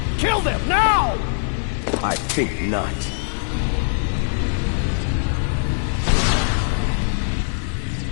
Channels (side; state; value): right; silent; digital silence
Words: Kill them, now! I think not.